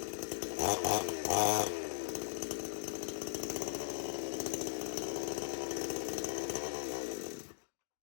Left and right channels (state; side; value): silent; right; digital silence